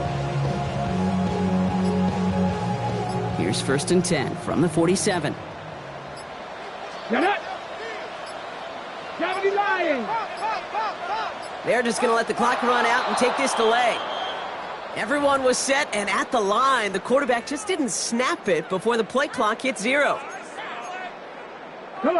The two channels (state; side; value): identical; both; correlation 1.00